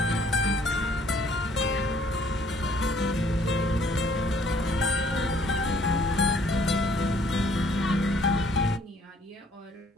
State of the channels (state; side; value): normal; both; correlation 0.61